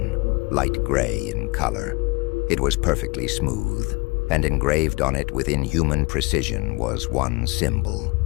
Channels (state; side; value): quieter; right; 25.6 dB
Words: light gray in color. It was perfectly smooth, and engraved on it with inhuman precision was one symbol,